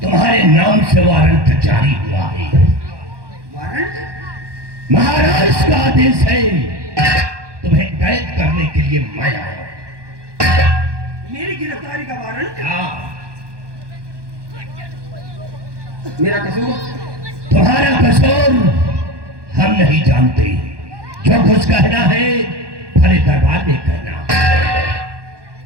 तुम्हारे नाम से वारंट जारी हुआ है। वारंट? महाराज का आदेश है, तुम्हें कैद करने के लिए मैं आया। मेरी गिरफ्तारी का वारंट? हाँ, मेरा कसूर? तुम्हारा कसूर हम नहीं जानते। जो कुछ कहना है भरे दरबार में कहना।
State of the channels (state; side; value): late; left; 1.2 ms